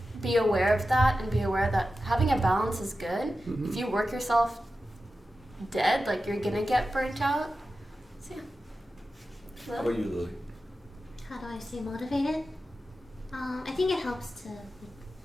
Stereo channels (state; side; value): normal; both; correlation 0.92